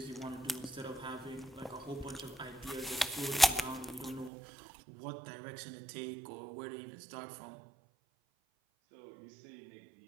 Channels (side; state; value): left; drops out; at 4.3 s